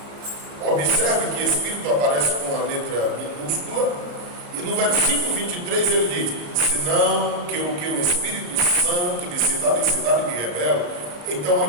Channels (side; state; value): left; late; 34 ms